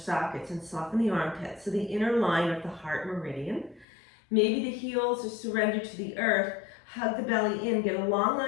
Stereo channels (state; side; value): drops out; right; at 3.9 s